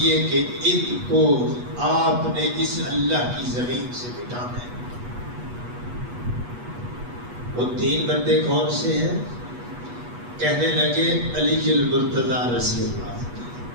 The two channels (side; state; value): left; late; 8.3 ms